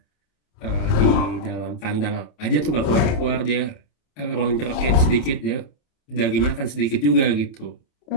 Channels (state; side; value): late; right; 27 ms